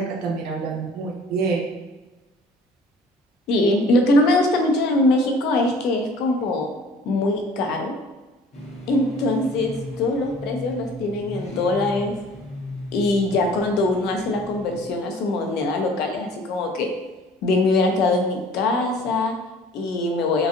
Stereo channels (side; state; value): both; normal; correlation 0.50